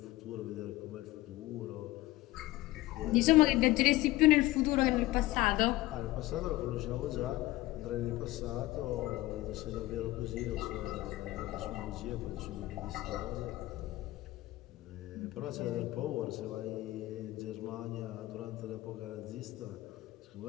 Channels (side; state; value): right; quieter; 18.0 dB